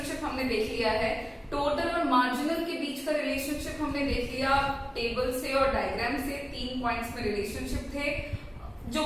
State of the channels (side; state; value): both; identical; correlation 1.00